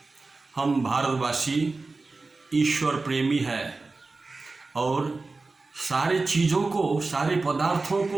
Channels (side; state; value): left; quieter; 3.7 dB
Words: हम भारतवासी ईश्वर प्रेमी है और सारे चीज़ों को, सारे पदार्थों